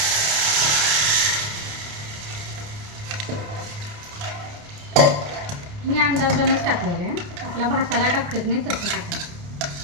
मी अंदाजानंच टाकलेलं आहे. आपला भाताला टाकत नाही तसं टाकायचं.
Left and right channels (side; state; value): left; late; 29 ms